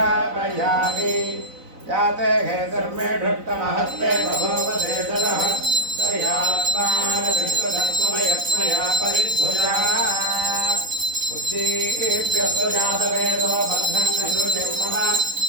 जाते हेतर्मे ढट्टमहस्ते बभूवते दरः तयात्मानविश्वधत्वमयत्मया परिभुजा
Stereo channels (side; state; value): left; late; 4.0 ms